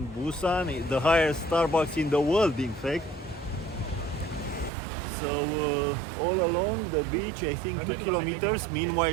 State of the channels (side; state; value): left; drops out; at 4.7 s